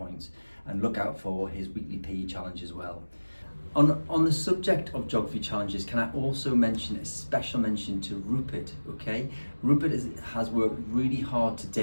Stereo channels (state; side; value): inverted; both; correlation -1.00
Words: and look out for his weekly PE challenge as well. On the subject of geography challenges, can I also mention a special mention to Rupert, okay? Rupert has worked really hard to